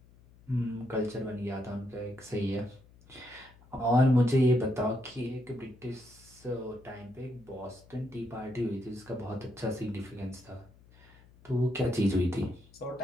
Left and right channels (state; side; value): noise; left; hum, 25 dB below the sound